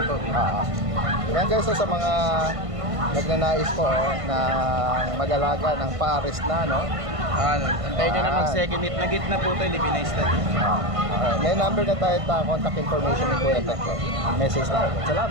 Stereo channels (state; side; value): late; left; 1.5 ms